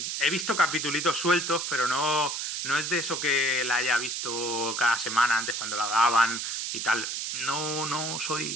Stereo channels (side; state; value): right; noise; hiss, 3 dB below the sound